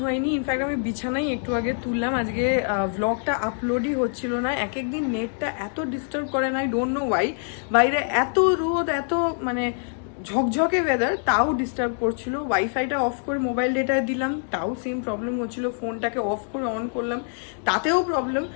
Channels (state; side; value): silent; right; 62 dB below the other